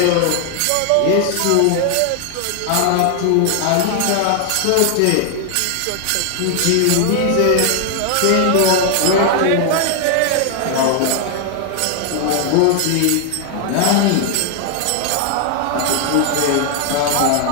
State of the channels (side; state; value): both; different; correlation 0.00